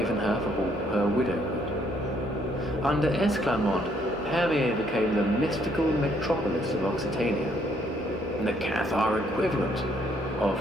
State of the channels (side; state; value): both; normal; correlation 0.68